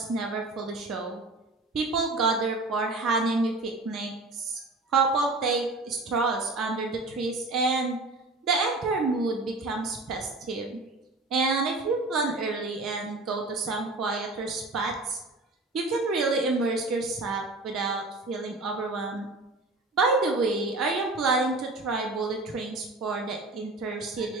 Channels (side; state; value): left; quieter; 3.0 dB